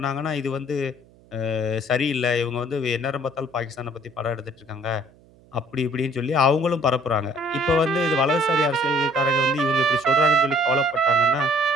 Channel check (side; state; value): right; noise; hum, 28 dB below the sound